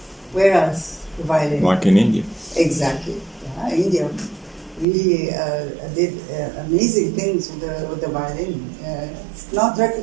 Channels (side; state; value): left; drops out; at 4.9 s